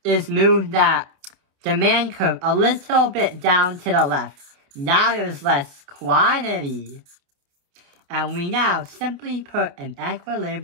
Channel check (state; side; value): late; left; 28 ms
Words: is move that demand curve a little bit down to the left. Now there's less quantity. And we now simply put an